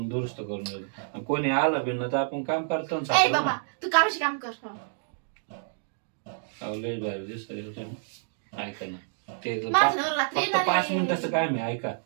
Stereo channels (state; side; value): silent; left; digital silence